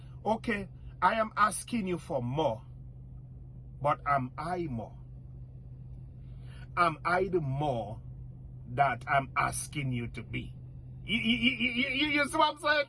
okay, I am asking you for more, but am I more? Am I the more that I'm asking you to be? You see what I'm saying?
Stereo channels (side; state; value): both; identical; correlation 1.00